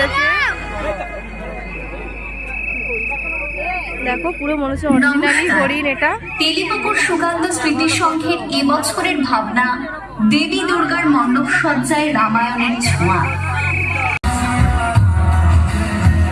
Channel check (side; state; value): both; identical; correlation 1.00